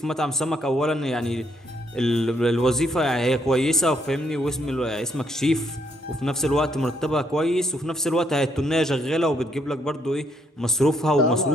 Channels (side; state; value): both; normal; correlation 0.72